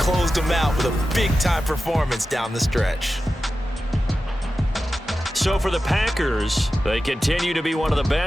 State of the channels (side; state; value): both; normal; correlation 0.93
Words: them out with a big-time performance down the stretch. So for the Packers, they continue to be one of the